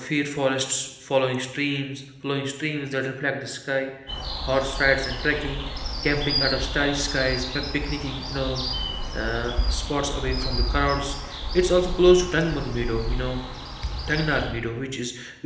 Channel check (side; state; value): both; identical; correlation 1.00